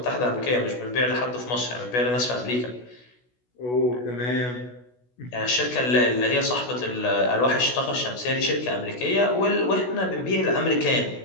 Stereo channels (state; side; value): late; right; 16 ms